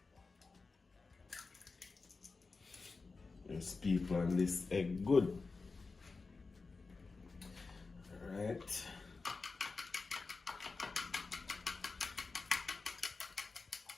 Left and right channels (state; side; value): quieter; right; 4.1 dB